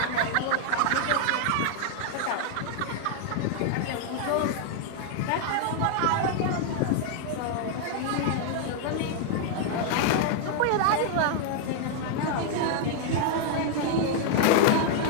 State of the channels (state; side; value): different; both; correlation 0.00